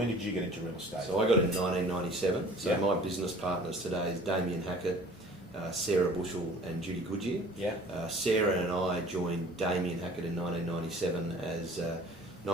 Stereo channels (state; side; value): normal; both; correlation 0.49